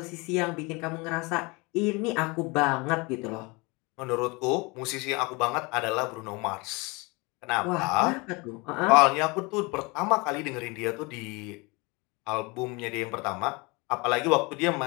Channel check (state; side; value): quieter; right; 27.0 dB